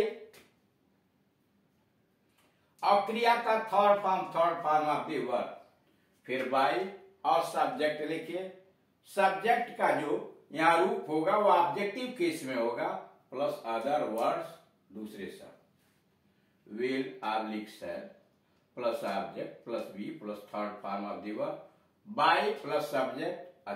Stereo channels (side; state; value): both; identical; correlation 1.00